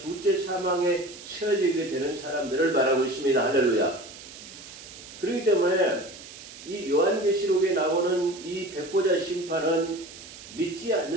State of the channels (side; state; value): right; noise; hiss, 16 dB below the sound